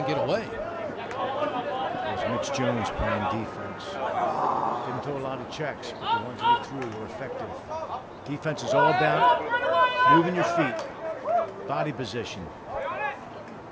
get away. There's Mitch Jones playing defense. Didn't throw a lot of checks, but the ones that he threw were effective. Defense is all about moving your feet, body position.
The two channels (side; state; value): both; identical; correlation 1.00